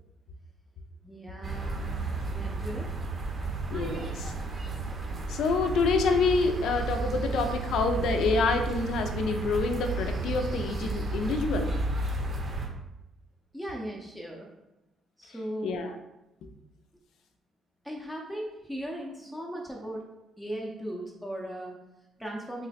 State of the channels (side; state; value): both; normal; correlation 0.66